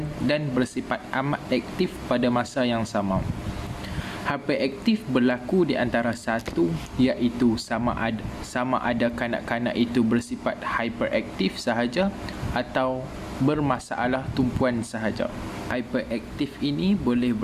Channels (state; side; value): identical; both; correlation 1.00